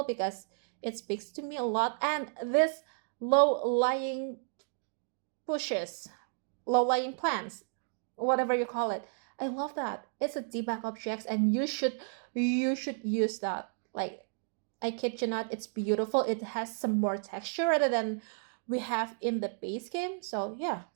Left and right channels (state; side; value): silent; left; digital silence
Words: because it speaks to me a lot. And this low lying bushes, low lying plants, whatever you call it, I love that. It's a debug objects, and you should use that. Like, I kid you not, it's beautiful. It has some more texture rather than we have in the base game. So yeah,